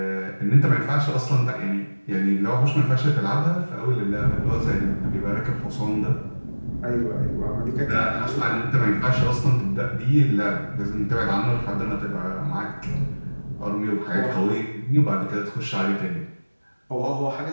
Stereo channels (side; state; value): both; inverted; correlation -1.00